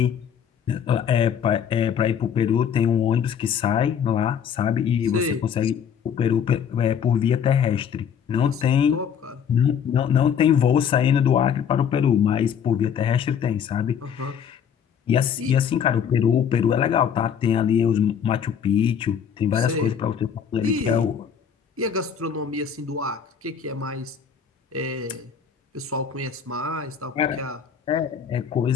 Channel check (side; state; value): right; quieter; 7.8 dB